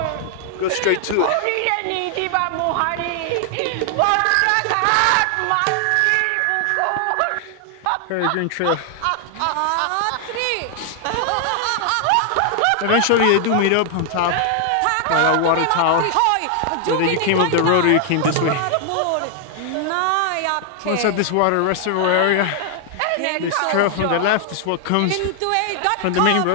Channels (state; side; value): different; both; correlation 0.00